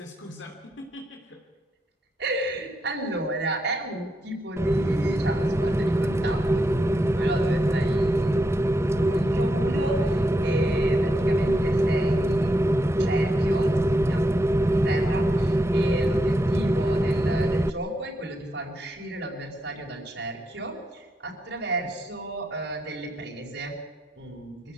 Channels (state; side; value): normal; both; correlation 0.82